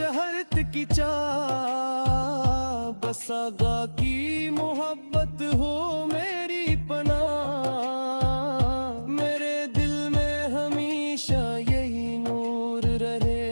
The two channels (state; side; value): inverted; both; correlation -1.00